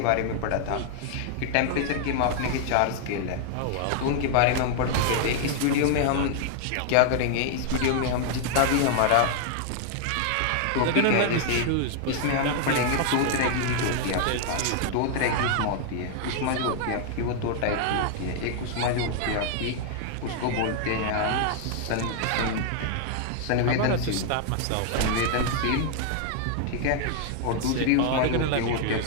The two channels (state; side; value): different; both; correlation 0.00